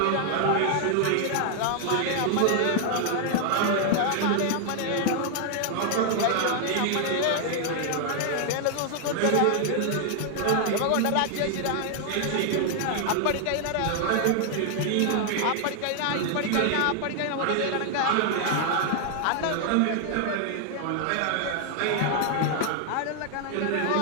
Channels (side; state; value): both; different; correlation 0.00